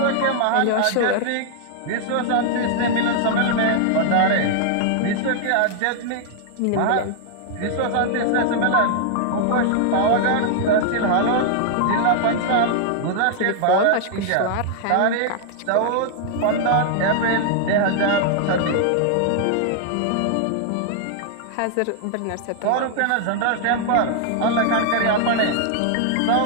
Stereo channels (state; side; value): different; both; correlation -0.01